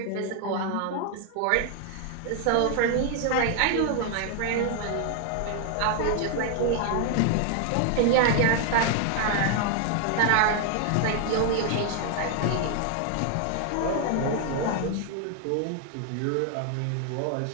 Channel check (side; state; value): both; different; correlation 0.00